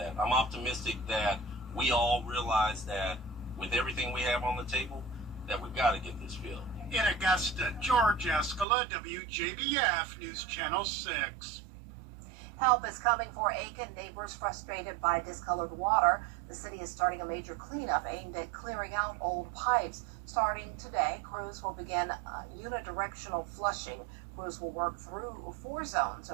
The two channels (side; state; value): left; drops out; at 8.7 s